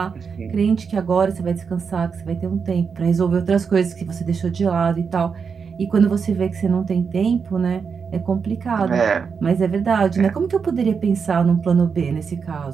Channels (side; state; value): left; quieter; 5.9 dB